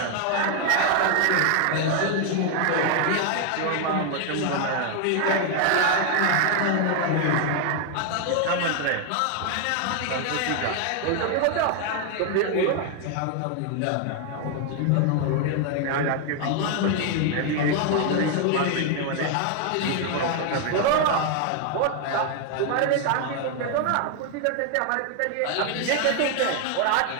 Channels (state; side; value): different; both; correlation 0.00